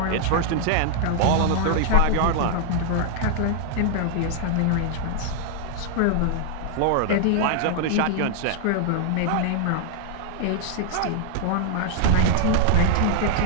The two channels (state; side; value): different; both; correlation 0.00